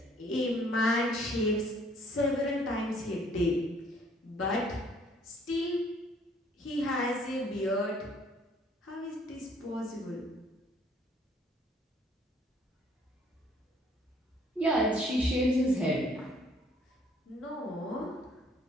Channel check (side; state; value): both; normal; correlation 0.61